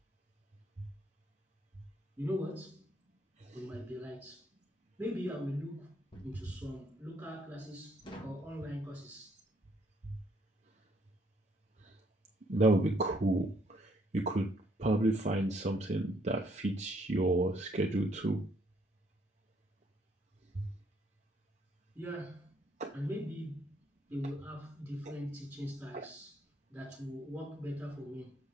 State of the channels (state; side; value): normal; both; correlation 0.69